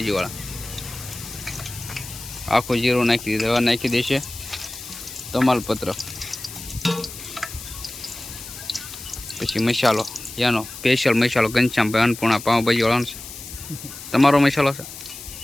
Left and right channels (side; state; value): left; noise; hiss, 12 dB below the sound